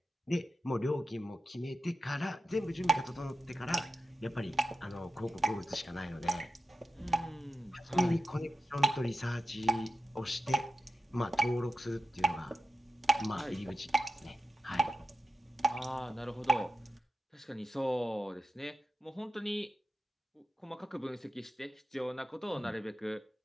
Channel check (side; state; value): both; normal; correlation 0.91